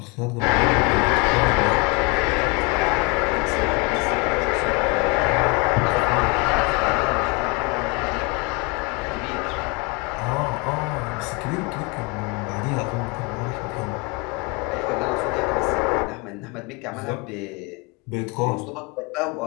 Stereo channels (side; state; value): right; quieter; 28.8 dB